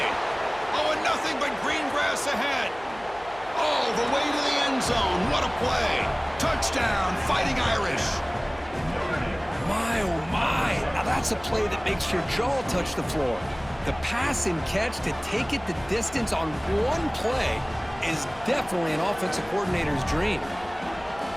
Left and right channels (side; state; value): left; noise; hum, 21 dB below the sound